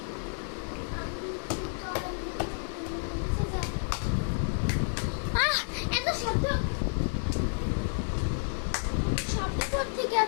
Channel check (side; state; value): right; silent; 58 dB below the other